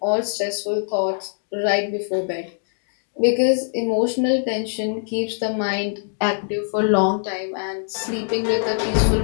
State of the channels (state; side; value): silent; right; digital silence